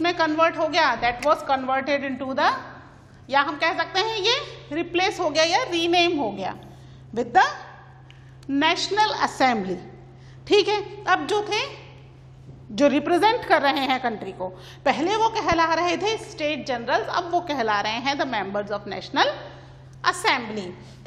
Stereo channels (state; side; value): identical; both; correlation 1.00